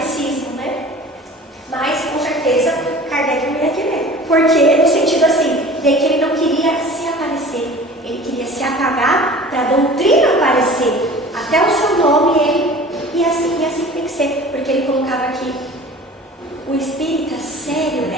né? Mas, com certeza, Kardec não ia querer. Porque, no sentido assim, de que ele não queria se aparecer, ele queria se apagar para a doutrina aparecer. Até o seu nome, ele, e assim tem que ser, porque ele colocava aqui, o espírita sério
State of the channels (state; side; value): normal; both; correlation 0.42